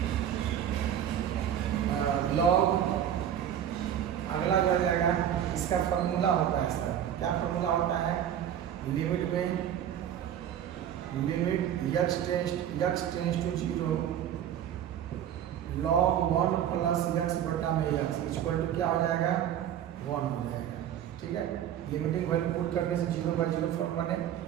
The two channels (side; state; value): left; quieter; 10.2 dB